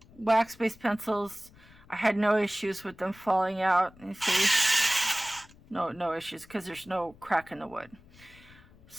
wax-based pencils, I had no issues with them falling out. You see, no issues because there's no crack in the wood.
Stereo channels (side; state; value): left; noise; rumble, 25 dB below the sound